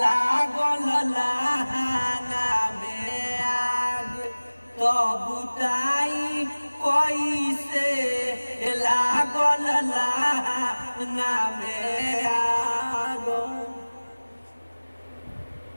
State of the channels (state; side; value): inverted; both; correlation -1.00